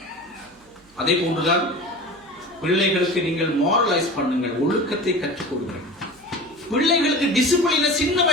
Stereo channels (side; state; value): right; noise; hum, 30 dB below the sound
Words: அதே போன்றுதான் பிள்ளைகளுக்கு நீங்கள் மாரலைஸ் பண்ணுங்கள், ஒழுக்கத்தை கற்றுக் கொடுங்கள். பிள்ளைகளுக்கு டிசிப்ளினை சின்ன